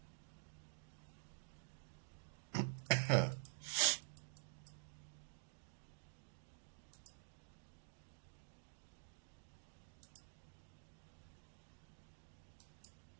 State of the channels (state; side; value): silent; left; digital silence